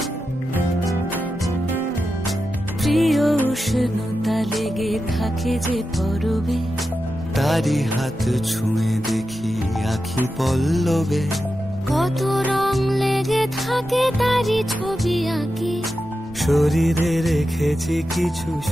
প্রিয় উষ্ণতা লেগে থাকে যে পরবে, তারি হাত ছুঁয়ে দেখি আখি পল্লবে, কত রং লেগে থাকে তারি ছবি আঁকি, শরীরে রেখেছি কিছু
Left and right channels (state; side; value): normal; both; correlation 0.90